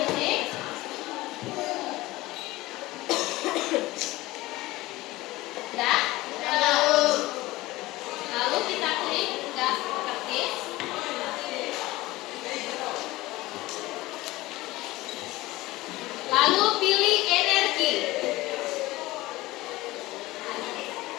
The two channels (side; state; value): right; quieter; 19.0 dB